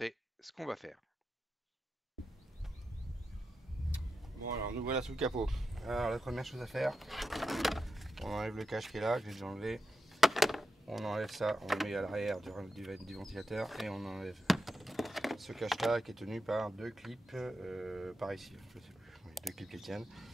ce qu'on va faire. Bon alors nous voilà sous le capot. Alors la première chose à faire, on enlève le cache qui est là, que j'ai déjà enlevé. On enlève ça, on le met à l'arrière du ventilateur et on enlève ce cache là qui est tenu par deux clips par ici, je sais plus, oui, deux clips qui tiennent.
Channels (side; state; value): both; normal; correlation 0.88